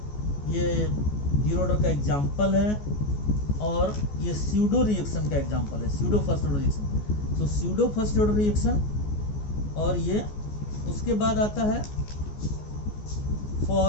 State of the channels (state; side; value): late; right; 14 ms